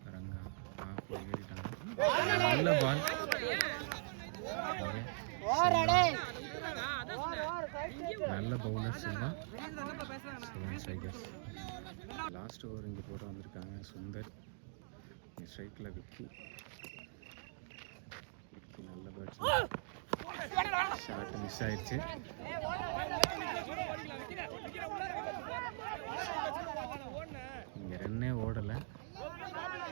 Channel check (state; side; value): silent; left; digital silence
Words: ரங்கா ஆஃப்ல ஏறிட்டாங்க. நல்ல பால், நல்ல bowler Selva. Strikers last over இங்கே போட வந்திருக்காங்க. சுந்தர் ஸ்ட்ரைக்கில் விக்கி நல்ல பேட்ஸ்மேன். ஷாட் மிஸ் ஆயிடுச்சு. இங்கே ரன்னே ஓடலை.